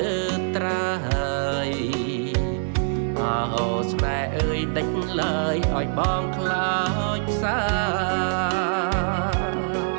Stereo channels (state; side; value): silent; left; 62 dB below the other